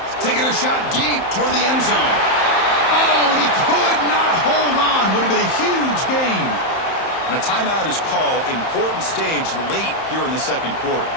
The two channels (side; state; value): right; late; 31 ms